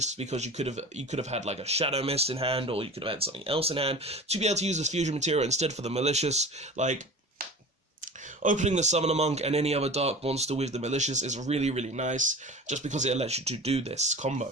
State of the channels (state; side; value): normal; both; correlation 0.36